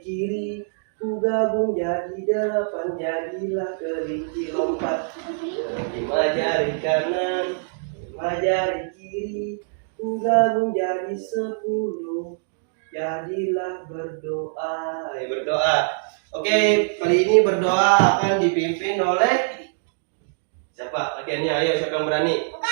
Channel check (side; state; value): left; silent; digital silence